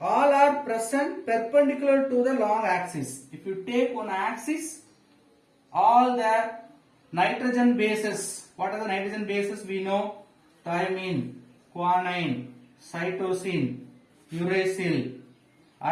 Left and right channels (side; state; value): both; identical; correlation 1.00